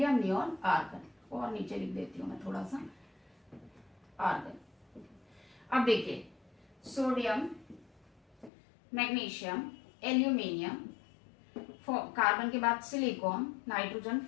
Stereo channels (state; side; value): drops out; right; at 8.5 s